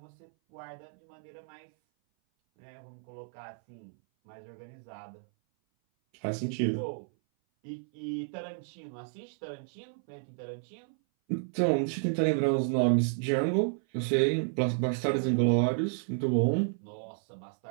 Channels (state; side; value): silent; left; 57 dB below the other